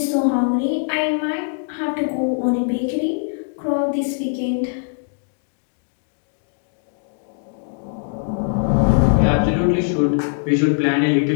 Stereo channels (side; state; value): right; silent; 65 dB below the other